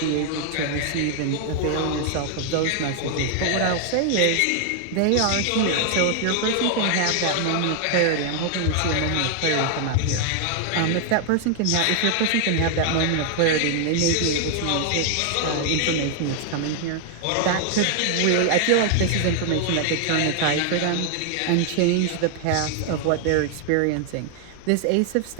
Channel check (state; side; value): different; both; correlation 0.00